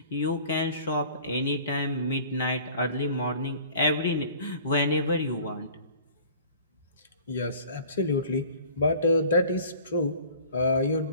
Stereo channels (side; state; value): both; inverted; correlation -0.47